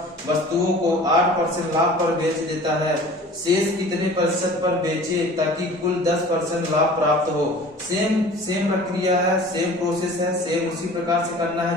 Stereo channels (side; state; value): both; normal; correlation 0.44